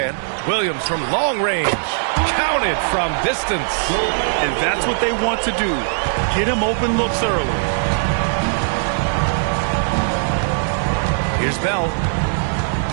Williams from long range. Counted from distance. And that's what they want to do. Get him open looks early. Here's Bell.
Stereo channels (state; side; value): silent; left; digital silence